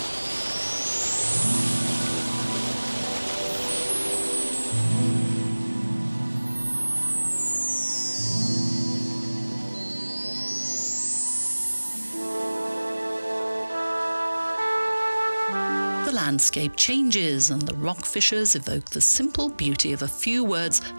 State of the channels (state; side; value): inverted; both; correlation -1.00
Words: The landscape changes and the rock fissures evoke the simple beauty of a few words